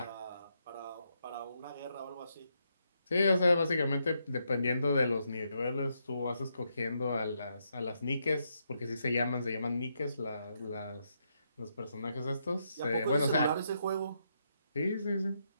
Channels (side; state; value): both; inverted; correlation -0.80